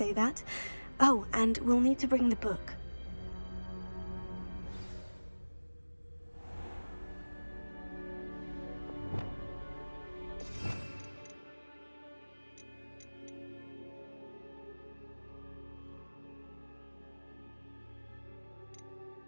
that. Oh, and we'll need to bring the book.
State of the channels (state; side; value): inverted; both; correlation -1.00